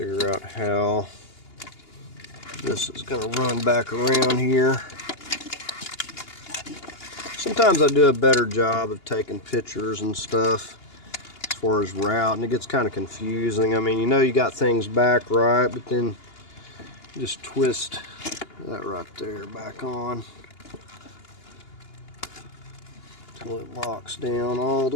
out how this is going to run back around here. Sometimes I do a better job of taking pictures and stuff as far as route, and it gets kind of confusing. I mean, you know you got things back right, but then you just twist that right there back on until it locks down all the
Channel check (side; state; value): right; late; 2.8 ms